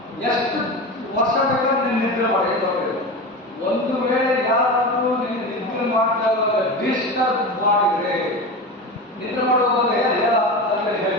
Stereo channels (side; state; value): both; normal; correlation 0.25